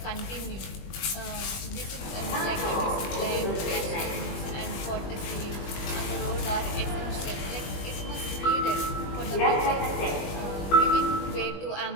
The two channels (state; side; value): late; right; 20 ms